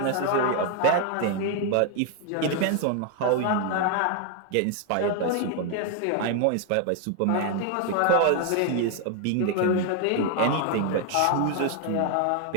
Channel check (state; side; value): different; both; correlation 0.00